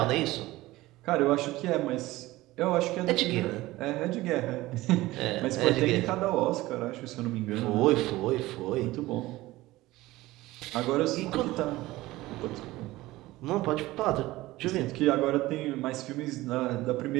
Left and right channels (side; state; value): left; quieter; 18.2 dB